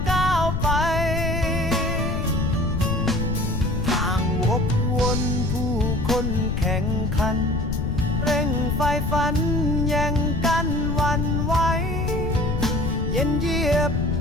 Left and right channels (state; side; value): noise; left; rumble, 2 dB below the sound